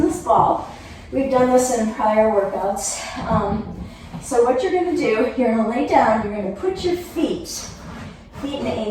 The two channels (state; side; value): identical; both; correlation 1.00